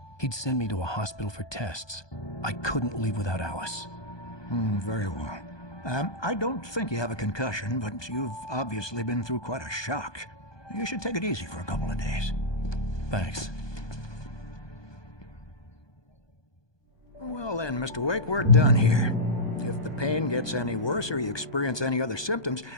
He'd send me to a hospital for tests. I couldn't leave without Alice. Very well. I don't think you have a concussion, but you've obviously been through quite a shock. You should take it easy for a couple of days. Thanks. Well then, Mr. Wake, we're done here. If the pain gets any worse or you experience any other symptoms,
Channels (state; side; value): late; right; 1.2 ms